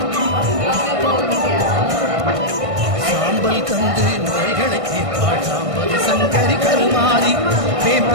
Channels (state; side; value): late; left; 1.6 ms